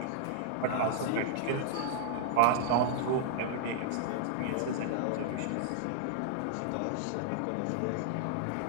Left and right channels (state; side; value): different; both; correlation -0.01